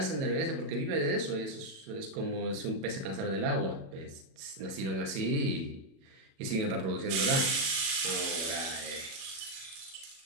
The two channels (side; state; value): left; late; 37 ms